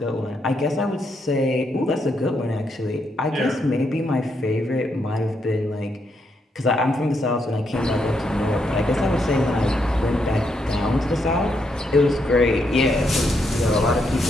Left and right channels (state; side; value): normal; both; correlation 0.78